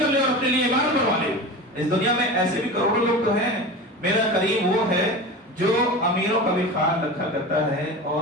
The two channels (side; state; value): both; normal; correlation 0.30